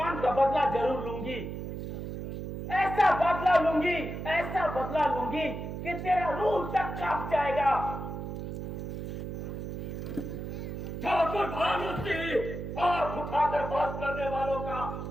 का बदला जरूर लूंगी। ऐसा बदला लूंगी, ऐसा बदला लूंगी कि तेरा रूह तक कांप जाएगा। ठाकुर भानु सिंह आंख उठाकर बात करने वालों का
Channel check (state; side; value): noise; right; hum, 6 dB below the sound